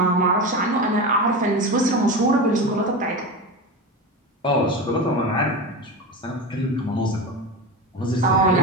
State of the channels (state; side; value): normal; both; correlation 0.23